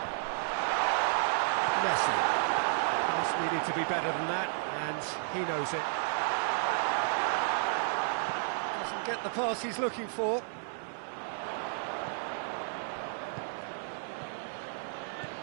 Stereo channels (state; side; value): silent; left; 56 dB below the other